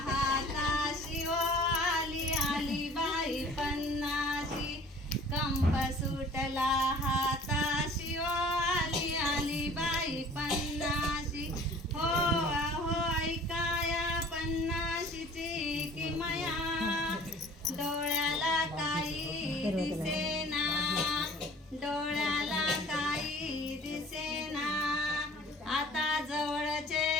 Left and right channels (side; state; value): both; normal; correlation 0.49